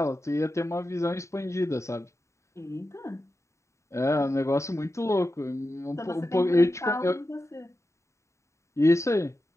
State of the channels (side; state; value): right; late; 0.14 ms